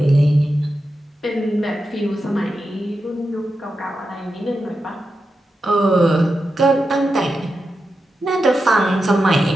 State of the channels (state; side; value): normal; both; correlation 0.89